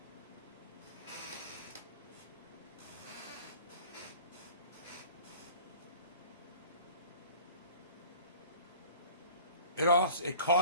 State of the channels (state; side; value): inverted; both; correlation -0.46